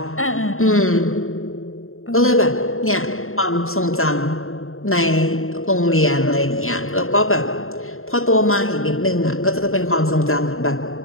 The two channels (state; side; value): late; right; 0.61 ms